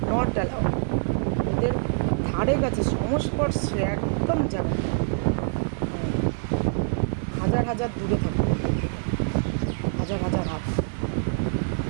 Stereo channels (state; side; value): silent; left; 61 dB below the other